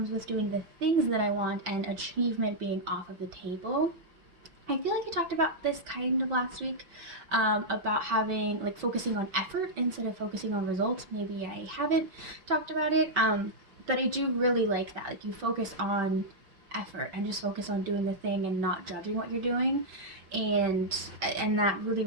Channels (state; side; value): late; left; 5.9 ms